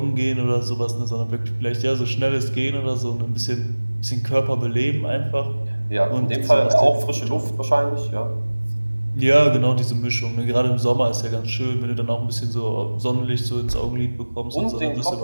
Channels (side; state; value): both; inverted; correlation -1.00